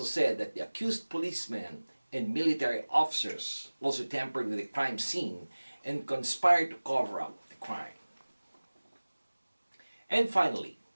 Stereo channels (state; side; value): inverted; both; correlation -1.00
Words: said that the accused policemen and military officers also tampered with the crime scene and conspired to cover up the crime. And finally,